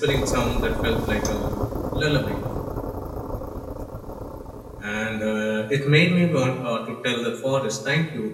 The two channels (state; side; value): identical; both; correlation 1.00